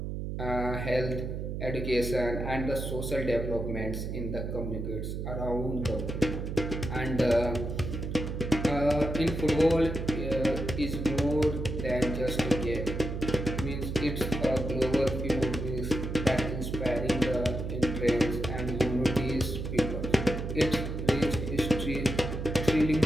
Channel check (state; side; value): noise; right; hum, 4 dB below the sound